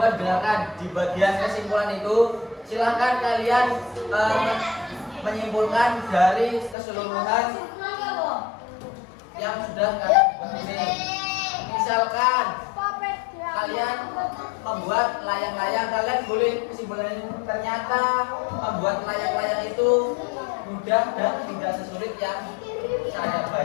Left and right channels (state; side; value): drops out; right; at 6.8 s